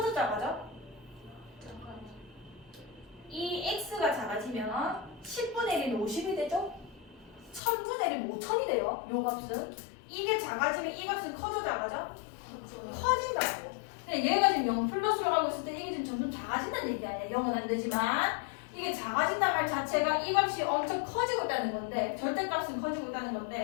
작아져? 이 x가 작아지면 10분의 1이 50이 되죠? 1000분의 1이 5000이 돼요. 요 값은. 이게 작아지면 이 값은 커져 작아져? 커진다고. 근데 얘가 지금 0 플러스로 가고 있을 때 이게 지금 점점 작아진다는 얘기 아니야. 0은 안 되지만 이게 작아진다는 말 자체가 이 값이 엄청 커지고 있다는 건데 절대값은 커지고 있다는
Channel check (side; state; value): right; drops out; at 7.6 s